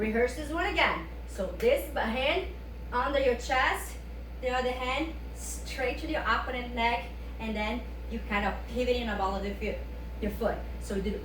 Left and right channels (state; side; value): identical; both; correlation 1.00